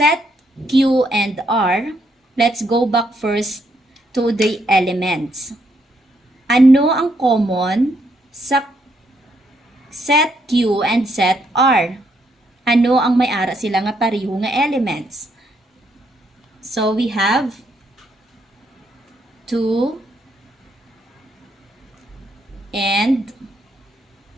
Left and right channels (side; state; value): both; normal; correlation 0.74